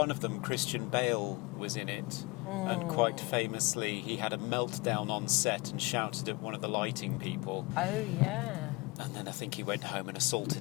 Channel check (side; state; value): right; quieter; 25.0 dB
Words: of them, Christian Bale, was in it, and quite famously he had a meltdown on set and shouted at one of the lighting people. Oh, yeah. And then I think he went home and